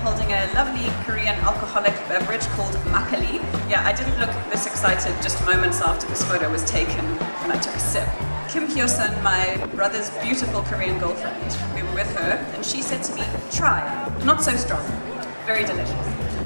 holding a lovely Korean alcoholic beverage called makgeolli. Yeah, I didn't look this excited just moments after this photo was taken when I took a sip. Kim Hyo-sun, my brother's beautiful Korean girlfriend, we were with her, and she said to me, try. Not so strong, very delicious.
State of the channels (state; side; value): inverted; both; correlation -1.00